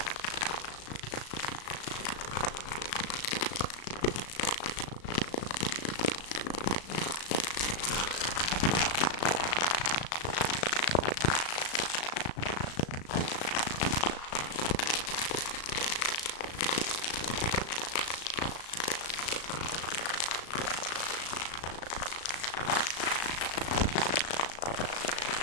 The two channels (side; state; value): right; late; 36 ms